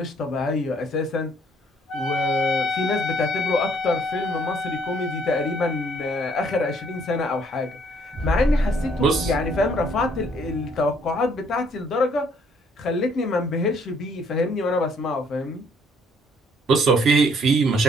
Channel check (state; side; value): normal; both; correlation 0.64